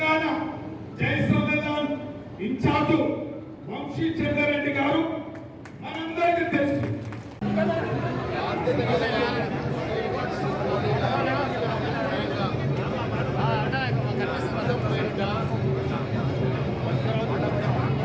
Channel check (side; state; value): both; identical; correlation 1.00